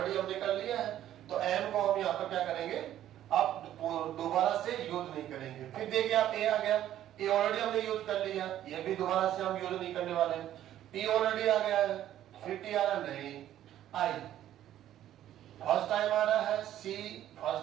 हमने कर लिया है, तो m को हम यहाँ पर क्या करेंगे, अब दोबारा से यूज नहीं करेंगे। फिर देखिए आप a आ गया, ए ऑलरेडी हमने यूज कर लिया, ये भी दोबारा से हम यूज नहीं करने वाले। टी ऑलरेडी आ गया है, फिर टी आ रहा नहीं, आई फर्स्ट टाइम आ रहा है, सी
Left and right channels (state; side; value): quieter; left; 12.1 dB